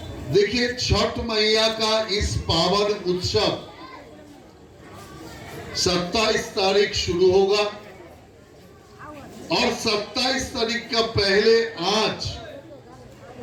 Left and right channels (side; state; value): both; identical; correlation 1.00